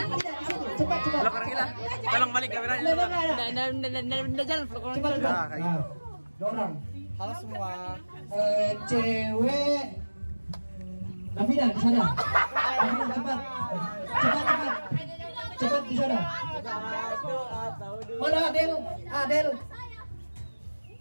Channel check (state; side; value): inverted; both; correlation -1.00